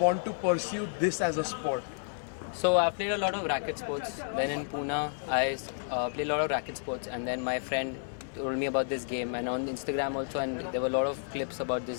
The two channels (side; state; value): right; silent; digital silence